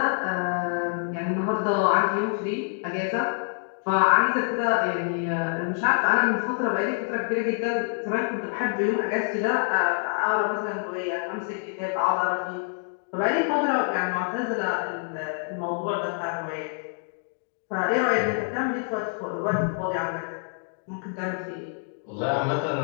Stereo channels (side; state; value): right; silent; 61 dB below the other